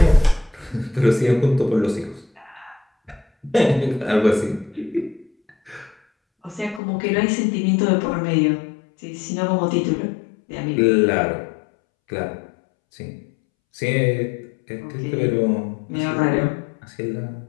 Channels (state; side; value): drops out; right; at 6.8 s